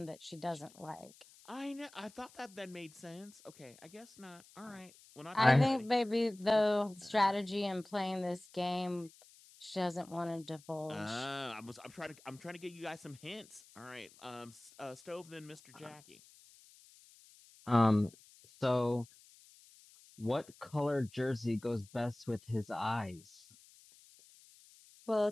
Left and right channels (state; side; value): noise; left; hiss, 24 dB below the sound